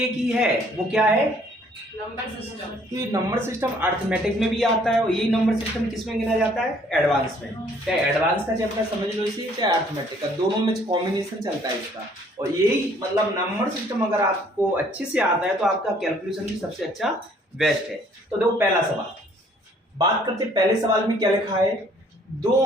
ही है, वो क्या है नंबर सिस्टम। तो ये नंबर सिस्टम अर्थमेटिक में भी आता है और यही नंबर सिस्टम किस में गिना जाता है एडवांस में। चाहे एडवांस का चैप्टर समझ लो इसी, चाहे अर्थमेटिक का, दोनों में कॉम्बिनेशन चलता है इसका। और यही मतलब नंबर सिस्टम अगर आपको अच्छे से आता है तो आपका कैलकुलेशन भी सबसे अच्छा बेस्ट है। तो देखो पहला सवाल बात करते, पहले सवाल में क्या लिखा है, 2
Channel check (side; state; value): both; normal; correlation 0.60